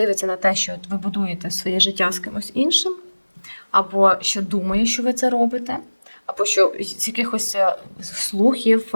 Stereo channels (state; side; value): inverted; both; correlation -1.00